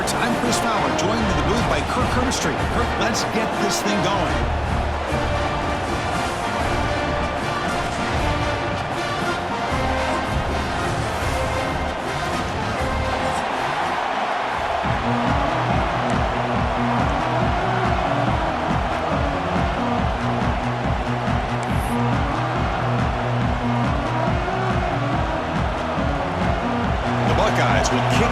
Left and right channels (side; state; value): both; identical; correlation 1.00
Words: I'm Chris Fowler, joined in the booth by Kirk Herbstreit. Kirk, let's get this thing going. Buckeyes will kick